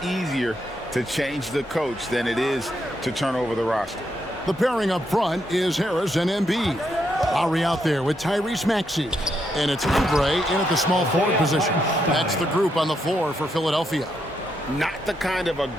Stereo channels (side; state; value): both; normal; correlation 0.79